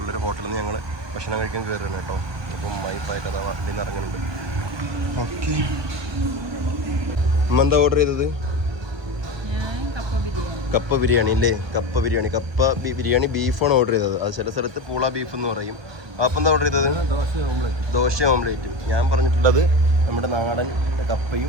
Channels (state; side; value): late; left; 1.2 ms